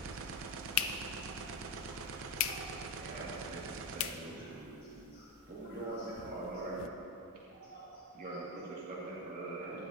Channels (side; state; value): both; normal; correlation 0.11